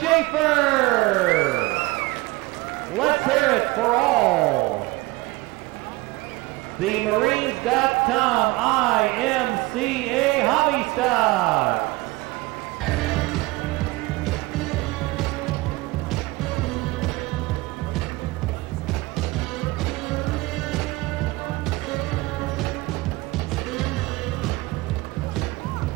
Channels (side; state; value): left; quieter; 21.8 dB